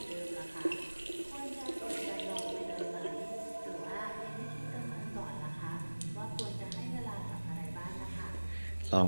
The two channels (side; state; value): both; inverted; correlation -1.00